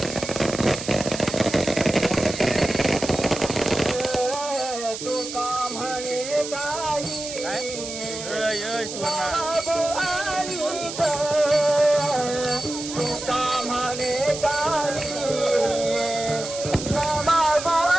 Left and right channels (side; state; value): right; noise; hiss, 8 dB below the sound